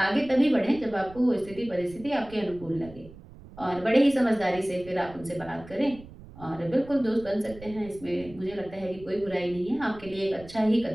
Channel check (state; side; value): noise; right; rumble, 19 dB below the sound